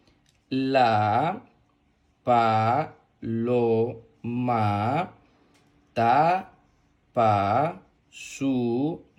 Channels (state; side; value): identical; both; correlation 1.00